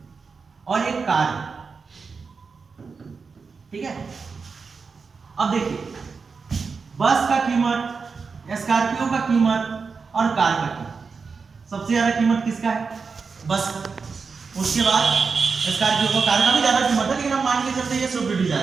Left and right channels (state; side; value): quieter; left; 5.0 dB